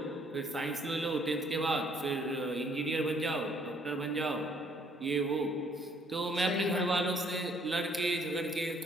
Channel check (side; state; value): both; normal; correlation 0.64